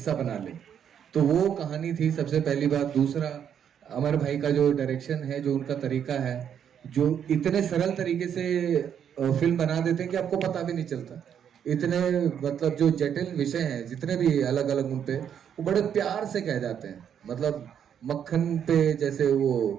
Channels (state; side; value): quieter; left; 8.6 dB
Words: बना ले, तो वो कहानी थी सबसे पहली बात. दूसरा, अमर भाई का जो डायरेक्शन है, जो उनका तरीका है, जो इतने सरल तरीके से फिल्म बना देते हैं कि आपको पता भी नहीं चलता. इतने मतलब जो जटिल विषय हैं जितने भी अलग अलग उन पे, वो बड़े प्यार से कह जाते हैं. मतलब मक्खन पे जैसे वो